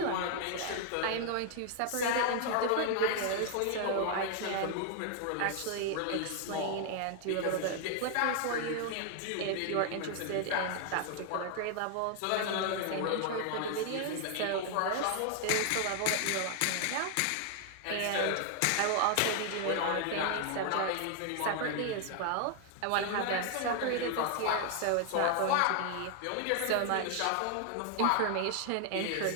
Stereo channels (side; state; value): both; different; correlation 0.00